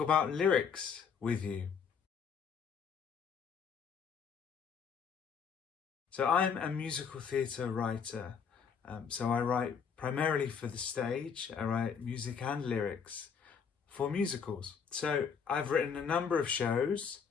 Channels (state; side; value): quieter; right; 6.6 dB